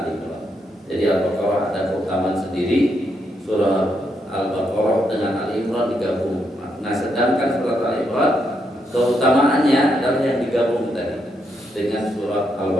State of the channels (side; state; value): both; normal; correlation 0.79